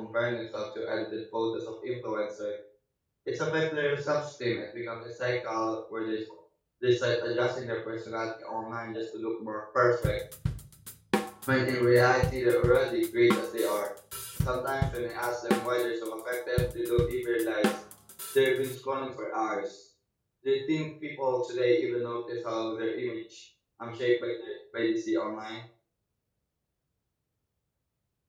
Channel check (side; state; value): both; identical; correlation 1.00